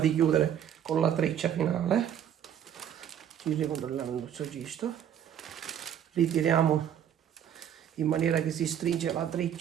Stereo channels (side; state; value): left; quieter; 9.6 dB